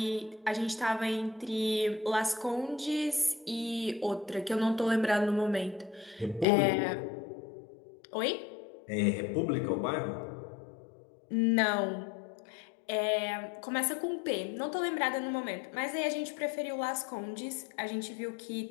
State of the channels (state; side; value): drops out; right; at 6.5 s